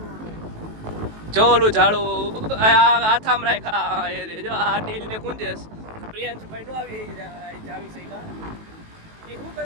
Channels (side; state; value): left; late; 18 ms